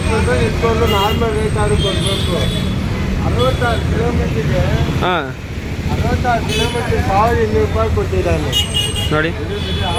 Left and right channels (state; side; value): identical; both; correlation 1.00